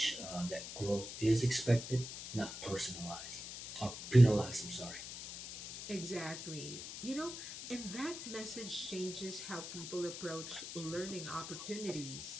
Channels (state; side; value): noise; left; hiss, 9 dB below the sound